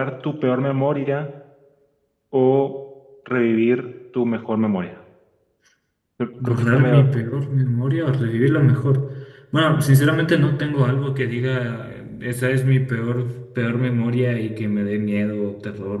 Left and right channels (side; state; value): both; identical; correlation 1.00